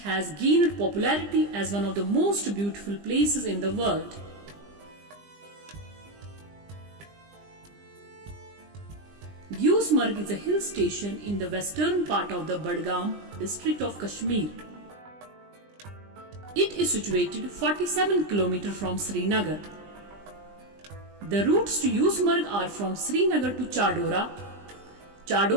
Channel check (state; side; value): late; left; 20 ms